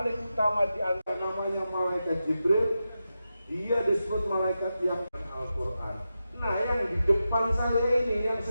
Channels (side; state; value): both; inverted; correlation -0.90